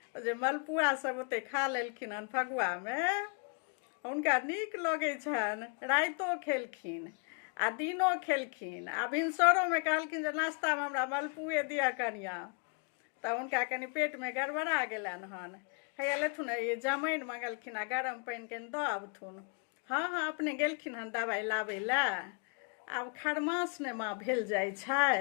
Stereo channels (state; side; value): quieter; right; 35.0 dB